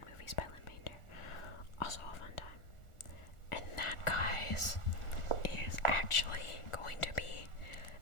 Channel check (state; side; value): late; right; 1.4 ms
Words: Movies by Lynn Painter. Also a fun time. And that, guys, is actually going to be